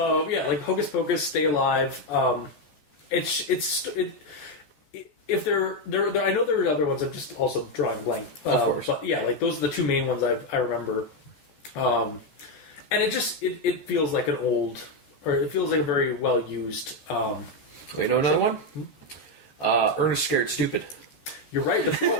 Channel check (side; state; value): right; late; 14 ms